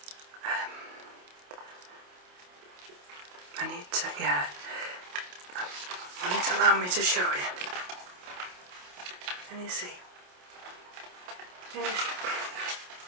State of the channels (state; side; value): late; left; 28 ms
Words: I need to, yeah. Will it allow me to show you? Can you see? Can you